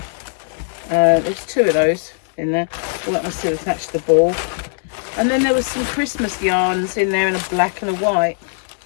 There's two of those in there. Well, that must have attached the ball. And then there was some Christmas yarns in there in a black and a white.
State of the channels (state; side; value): silent; right; digital silence